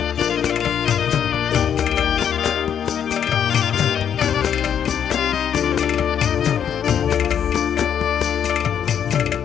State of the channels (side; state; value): right; quieter; 8.7 dB